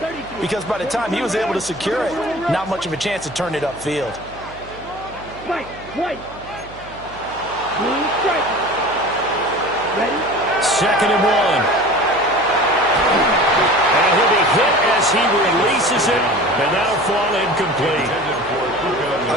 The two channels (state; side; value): noise; right; hum, 19 dB below the sound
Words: because by the time he was able to secure it, not much of a chance to turn it upfield. Right. Ready? 2nd and 1. And he'll be hit as he releases it, and that'll fall incomplete.